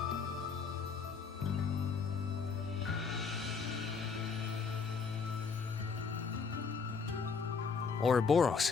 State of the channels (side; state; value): right; quieter; 5.3 dB